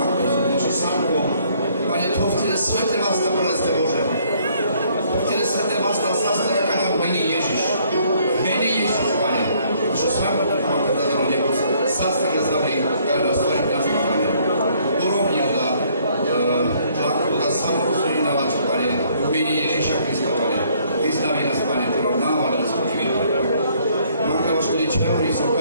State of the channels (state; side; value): inverted; both; correlation -0.64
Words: Sanko, Pane, to vtedy svete vás tam preleste, Bože. Vtedy svete vás tam zastane, kada v mene Ježiš. V mene Ježiš, Pane. Čo svako mám kada do nebo, zastane zavri, kada nás tvorí naši, Pane. Urovni da tlaku, da samorozumí na vás, Pane. V mene Ježiša Krista, Pane. Vystaví nás, Pane, ktorá náva nás učinil. Máka vaš ľudí čehorí, som